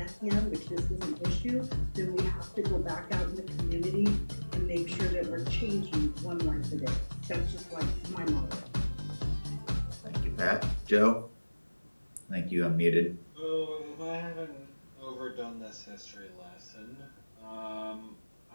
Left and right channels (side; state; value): both; inverted; correlation -1.00